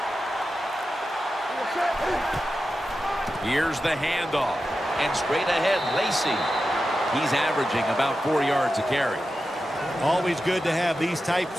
Here's the handoff. And straight ahead, Lacey. He's averaging about 4 yards a carry. Always good to have these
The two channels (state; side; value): normal; both; correlation 0.91